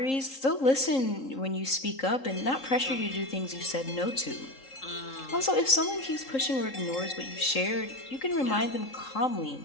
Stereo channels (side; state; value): right; late; 3.7 ms